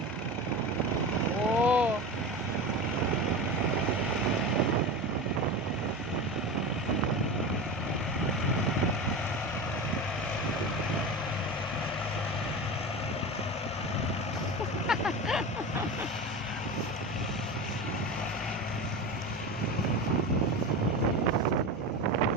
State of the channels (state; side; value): normal; both; correlation 0.26